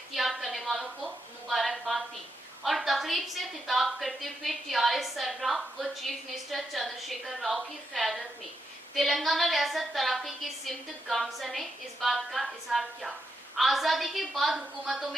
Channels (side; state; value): both; normal; correlation 0.82